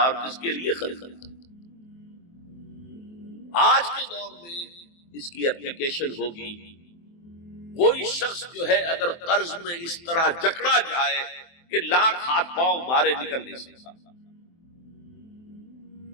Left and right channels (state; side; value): late; right; 23 ms